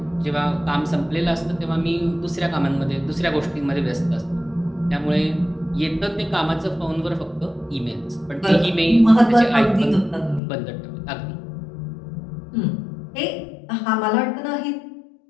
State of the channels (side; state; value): right; drops out; at 10.4 s